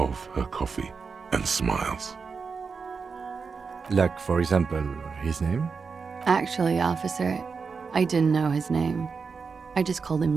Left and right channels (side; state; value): left; quieter; 5.2 dB